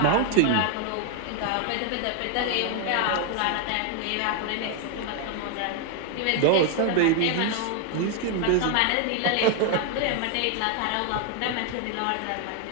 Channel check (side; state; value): both; different; correlation 0.01